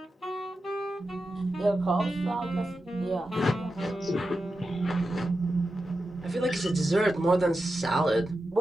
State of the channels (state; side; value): normal; both; correlation 0.90